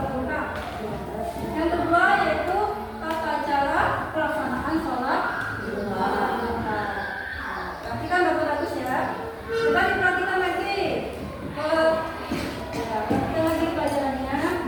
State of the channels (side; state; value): both; identical; correlation 1.00